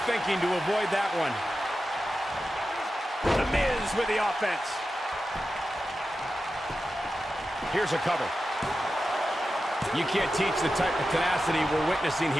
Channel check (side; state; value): both; normal; correlation 0.92